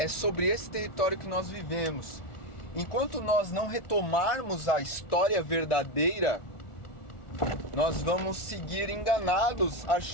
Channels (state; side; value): late; right; 1.4 ms